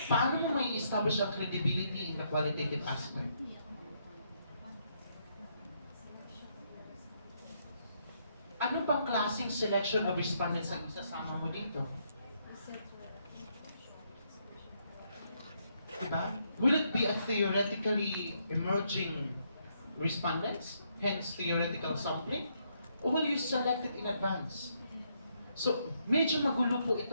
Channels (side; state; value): both; inverted; correlation -0.75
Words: Paano mo may establish ang credibility in the qualitative aspect? Ano bang klaseng selection of respondents ang isasama mo dito? Diba? Will it be a theoretically emerging respondents, hence theoretical sampling? Or will you select it in advance? So, medyo magulo po